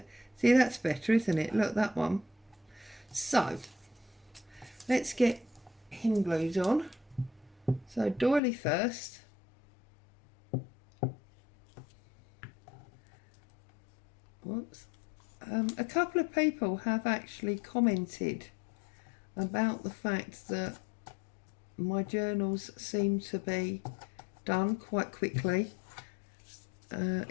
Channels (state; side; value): drops out; right; at 8.4 s